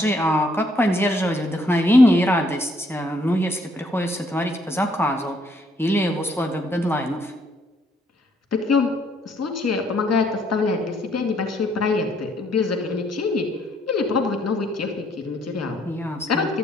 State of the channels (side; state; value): both; normal; correlation 0.68